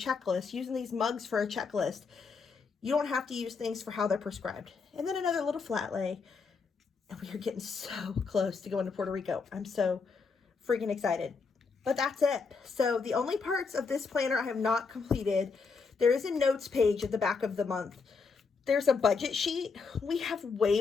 using these mugs for a checklist. You don't have to use things for how they're prescribed. And then another little flat lay. And we are getting so close to going to Puerto Rico. I'm so freaking excited. But that's it. So the only parts of this planner I have not completed, there is a notes page at the back of the month. There's a budget sheet. We have way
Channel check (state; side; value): quieter; right; 4.9 dB